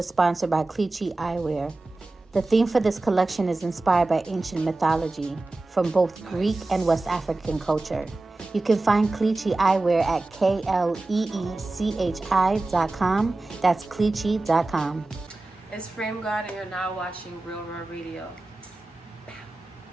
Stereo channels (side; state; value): left; quieter; 3.1 dB